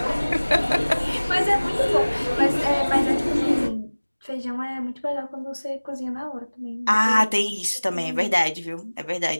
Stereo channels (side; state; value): both; inverted; correlation -1.00